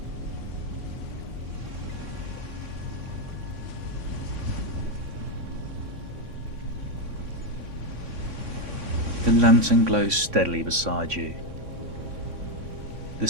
The lantern glows steadily beside you. The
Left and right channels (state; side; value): late; left; 3.5 ms